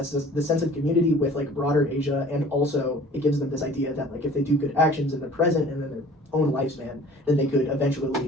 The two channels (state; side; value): normal; both; correlation 0.48